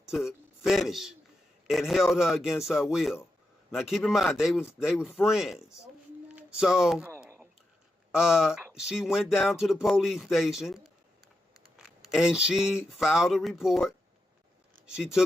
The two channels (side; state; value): both; normal; correlation 0.87